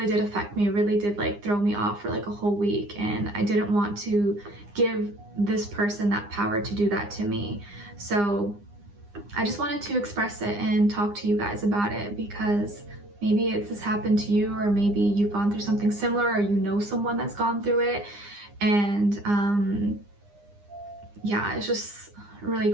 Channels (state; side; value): late; left; 9.8 ms